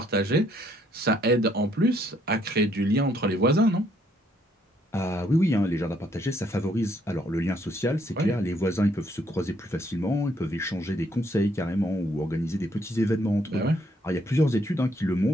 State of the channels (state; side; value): normal; both; correlation 0.69